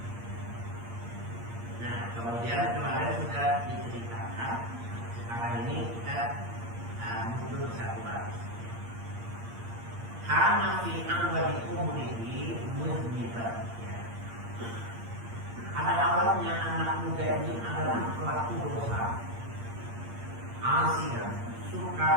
Nah, kemudian kemarin sudah diceritakan Sekarang ini kita mundur satu baris. Karena fi awali umrihi mudniban. Pada awalnya anak muda ini adalah pelaku dosa, asian,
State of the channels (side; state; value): left; late; 8.7 ms